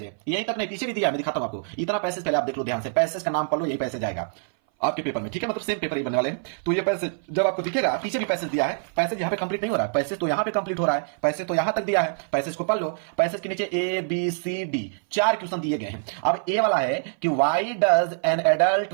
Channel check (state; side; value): silent; left; 59 dB below the other